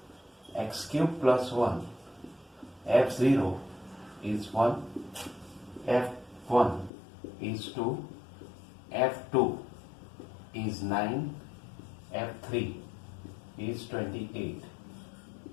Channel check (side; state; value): right; drops out; at 6.9 s